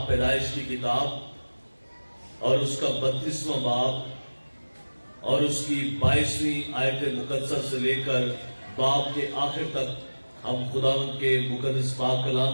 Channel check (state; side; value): inverted; both; correlation -1.00